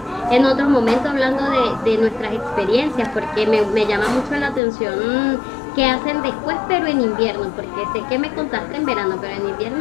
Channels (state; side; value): drops out; right; at 4.6 s